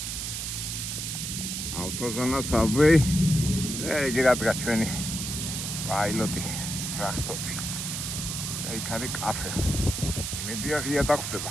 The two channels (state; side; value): noise; right; hiss, 4 dB below the sound